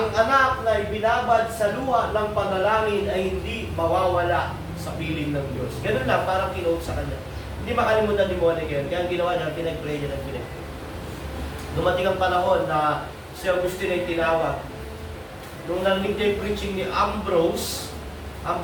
anak na ibinabad sa luha ng panalangin ay hindi mawawala sa piling ng Diyos. Ganun lang, parang kinuha sa kanya. Hindi makalimutan ni Monica yun. Kaya ang ginawa niya, pinag-pray niya ng pinag-pray. Dumating ang panahon na si Agustin ay tinawag. Nung narinig niya yung preaching ni Ambrose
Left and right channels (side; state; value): both; identical; correlation 1.00